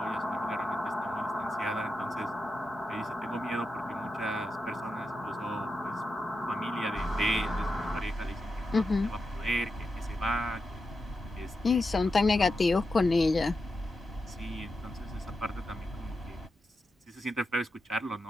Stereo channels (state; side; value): normal; both; correlation 0.88